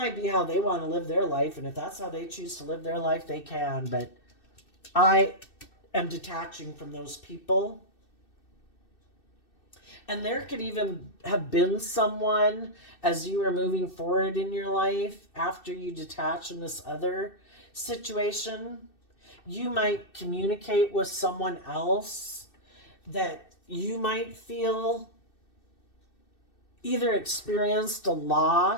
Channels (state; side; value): late; right; 2.6 ms